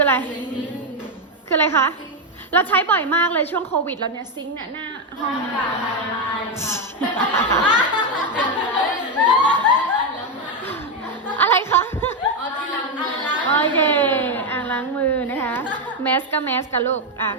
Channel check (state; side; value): normal; both; correlation 0.06